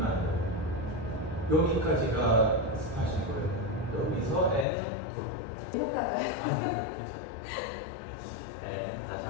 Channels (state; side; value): drops out; right; at 4.7 s